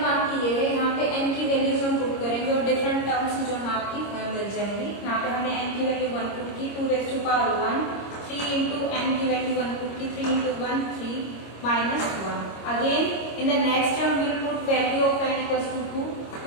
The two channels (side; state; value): right; late; 25 ms